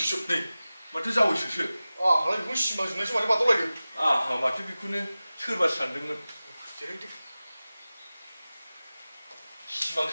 माथो जावैसोसो हालाय बेखौ सिमां जोंनायसो माथो बादावलायदों माथो बेखौनो सोरबा सानदोंमोन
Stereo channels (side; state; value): both; inverted; correlation -0.97